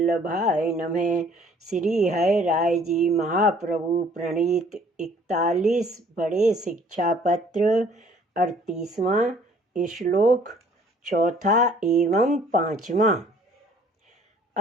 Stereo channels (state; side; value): normal; both; correlation 0.57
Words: नमः। श्री हरि राय जी महाप्रभु प्रणीत 41 बड़े शिक्षा पत्र 38वां श्लोक चौथा एवं पांचवा।